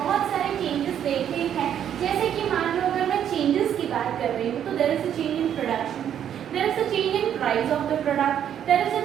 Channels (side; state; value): left; quieter; 9.6 dB